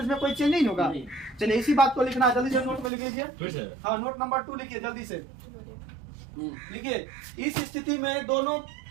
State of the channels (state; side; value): drops out; left; at 2.9 s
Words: में कोई चेंज नहीं होगा। चलिए इसी बात को लिखना, जल्दी से नोट में लिख लीजिए। हाँ, नोट नंबर 2 लिखिए जल्दी से, लिखिए। इस स्थिति में दोनों